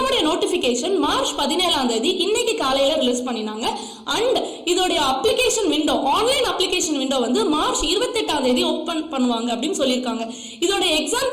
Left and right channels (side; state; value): both; identical; correlation 1.00